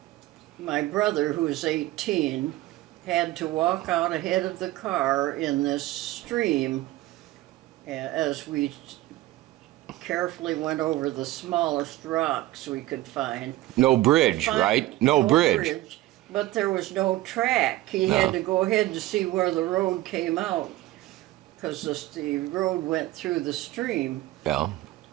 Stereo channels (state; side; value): quieter; left; 16.8 dB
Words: my brother, who was 18, had to walk out ahead of the car in this stream as we carefully went over the smallest rocks we could find. No bridge, right? No bridge. But there was no track. He had to go ahead to see where the road came out, because the road went through the stream. Yeah.